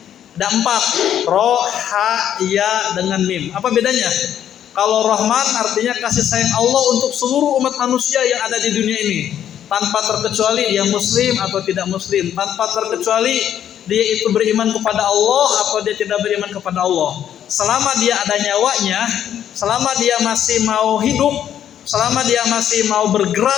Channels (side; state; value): right; quieter; 10.1 dB